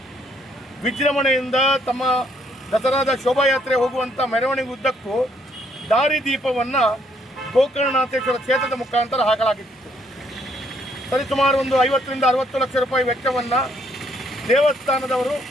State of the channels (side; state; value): both; normal; correlation 0.69